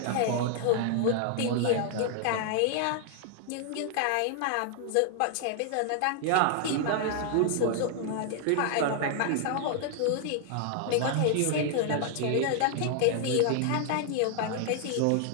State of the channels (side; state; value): both; different; correlation 0.00